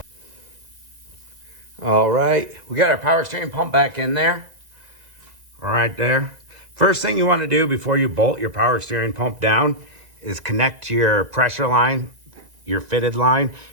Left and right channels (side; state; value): left; late; 1.9 ms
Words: All right, we got our power steering pump back in there. Right there. First thing you want to do before you bolt your power steering pump down is connect your pressure line, your fitted line,